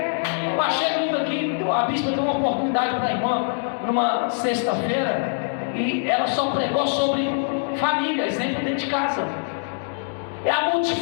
Eu achei lindo aqui, a bispa deu uma oportunidade para a irmã numa sexta-feira, e ela só pregou sobre família, exemplo dentro de casa. É a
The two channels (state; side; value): silent; right; digital silence